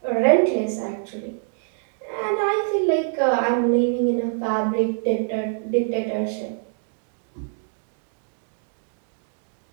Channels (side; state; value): left; silent; digital silence